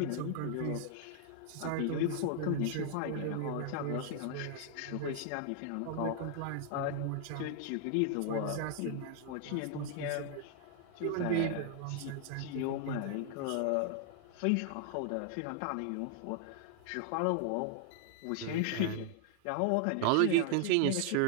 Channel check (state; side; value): different; both; correlation 0.00